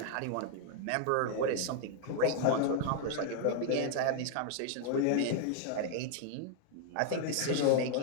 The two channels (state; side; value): different; both; correlation 0.00